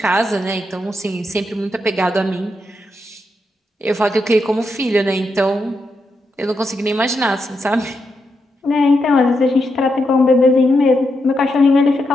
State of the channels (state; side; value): normal; both; correlation 0.83